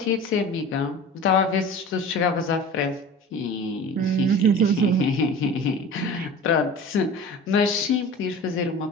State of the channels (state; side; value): normal; both; correlation 0.37